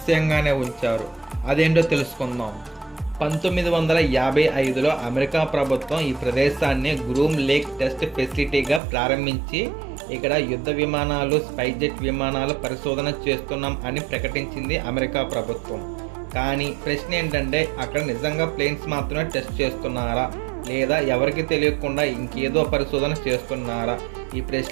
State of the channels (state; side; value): drops out; left; at 8.8 s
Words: ఉంచారు. అదేంటో తెలుసుకుందాం. 1955లో అమెరికా ప్రభుత్వం ఈ ప్రదేశాన్ని గ్రూమ్ లేక్ టెస్ట్ ఫెసిలిటీగా ప్రారంభించి ఇక్కడ యుద్ధ విమానాలు, స్పైజెట్ విమానాలు పరిశోధన చేస్తున్నాం అని ప్రకటించింది అమెరికా ప్రభుత్వం. కానీ ప్రశ్న ఏంటంటే, అక్కడ నిజంగా ప్లేన్స్ మాత్రమే టెస్ట్ చేస్తున్నారా, లేదా ఎవరికి తెలియకుండా ఇంకేదో పరిశోధన చేస్తున్నారా? ఈ